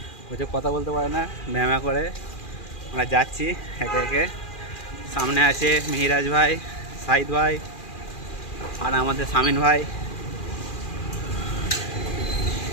হচ্ছে কথা বলতে পারে না, ম্যামা করে। আমরা যাচ্ছি একে একে। সামনে আছে মিহিরাজ ভাই, সাইদ ভাই আর আমাদের সামিন ভাই।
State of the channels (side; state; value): right; late; 2.4 ms